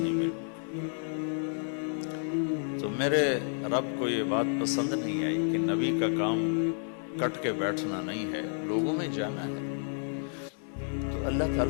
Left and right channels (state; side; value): silent; right; 57 dB below the other